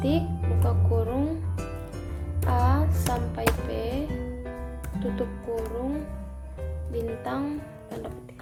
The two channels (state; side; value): identical; both; correlation 1.00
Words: buka kurung A sampai P, tutup kurung bintang, tanda